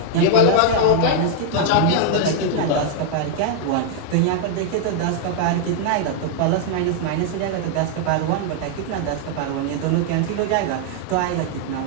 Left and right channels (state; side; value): different; both; correlation -0.01